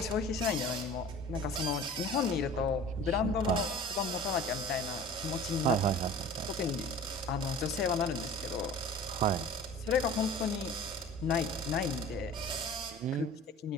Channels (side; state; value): both; normal; correlation 0.42